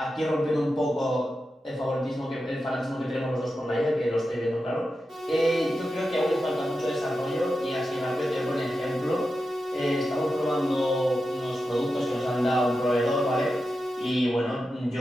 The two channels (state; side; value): normal; both; correlation 0.90